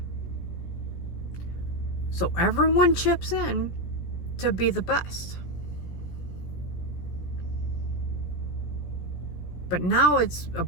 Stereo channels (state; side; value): late; right; 17 ms